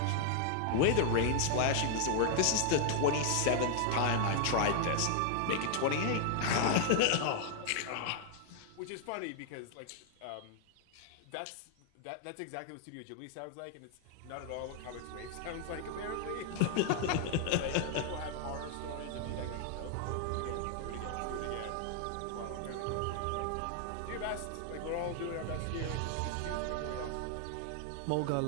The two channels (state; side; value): different; both; correlation 0.00